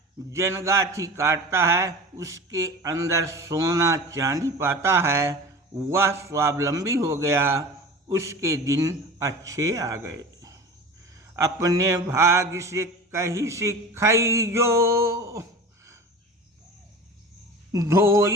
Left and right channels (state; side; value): normal; both; correlation 0.36